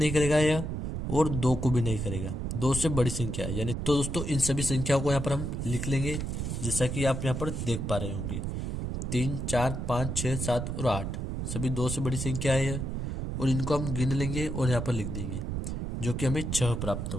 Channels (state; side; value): noise; right; rumble, 3 dB below the sound